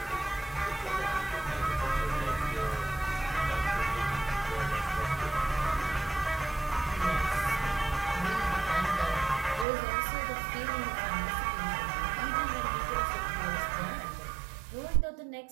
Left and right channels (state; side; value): drops out; left; at 9.7 s